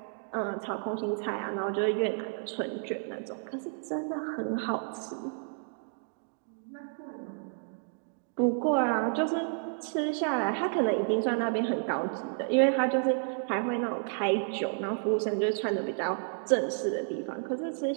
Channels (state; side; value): silent; left; digital silence